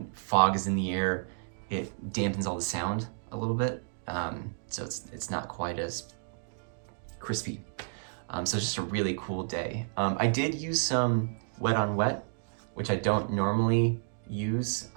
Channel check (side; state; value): left; silent; digital silence